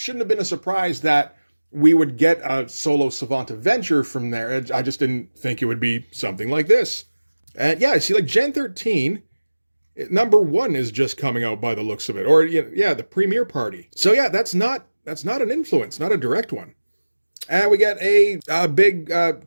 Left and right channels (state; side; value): inverted; both; correlation -1.00